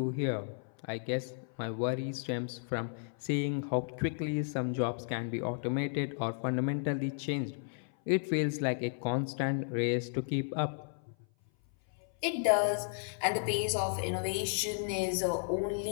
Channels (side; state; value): right; silent; 55 dB below the other